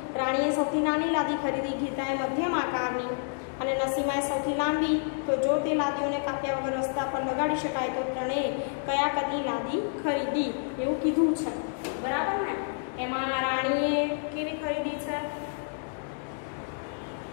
રાણીએ સૌથી નાની લાદી ખરીદી, ગીતાએ મધ્યમ આકારની અને નસીમાએ સૌથી લાંબી। તો જો તે લાદીઓને કાપ્યા વગર રસ્તા પર લગાડી શકાય તો ત્રણેય કયા કદની લાદી ખરીદી એવું કીધું છે, બરાબર ને। એમાં રાણીએ કેવી ખરીદી છે?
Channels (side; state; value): right; silent; digital silence